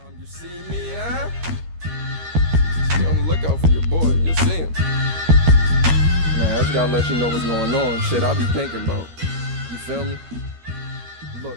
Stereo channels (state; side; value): late; left; 13 ms